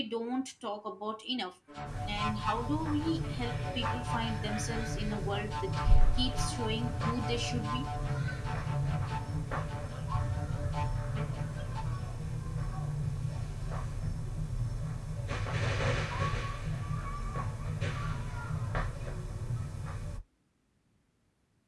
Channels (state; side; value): identical; both; correlation 1.00